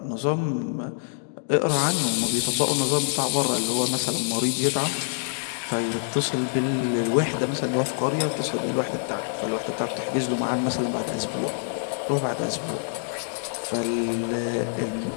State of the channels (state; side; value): silent; right; digital silence